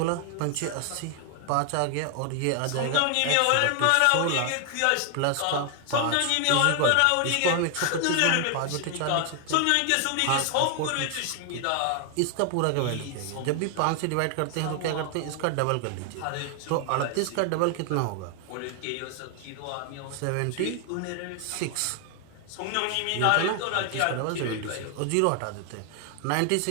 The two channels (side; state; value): both; different; correlation 0.00